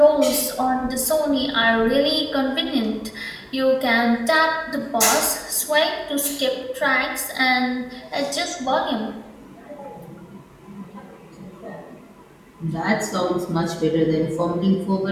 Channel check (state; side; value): identical; both; correlation 1.00